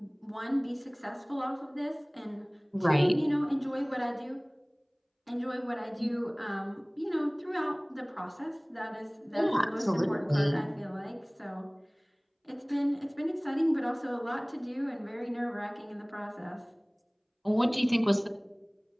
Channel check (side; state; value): both; identical; correlation 1.00